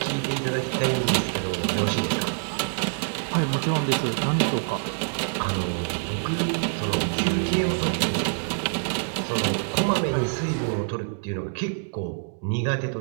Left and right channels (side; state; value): left; silent; digital silence